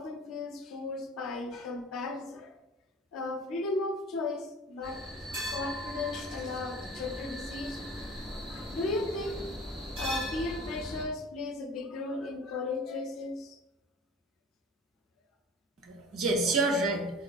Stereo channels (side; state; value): both; normal; correlation 0.41